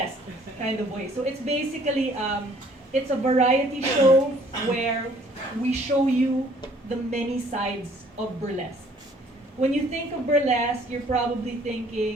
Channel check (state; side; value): normal; both; correlation 0.59